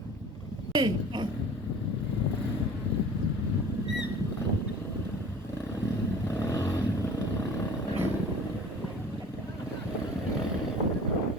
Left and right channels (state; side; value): normal; both; correlation 0.44